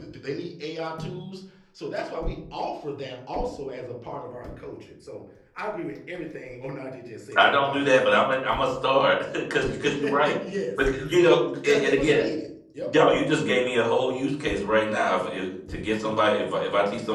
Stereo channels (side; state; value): both; identical; correlation 1.00